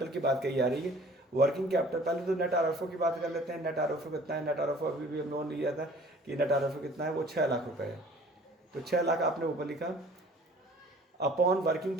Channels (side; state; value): both; normal; correlation 0.50